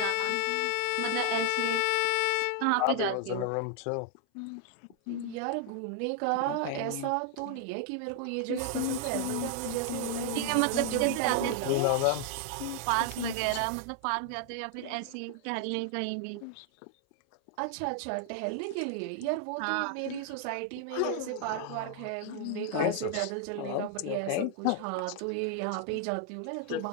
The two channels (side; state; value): both; different; correlation 0.00